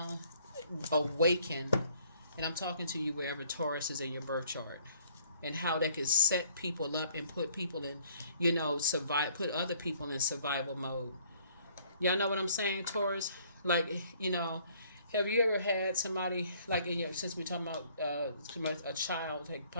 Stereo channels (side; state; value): both; inverted; correlation -0.60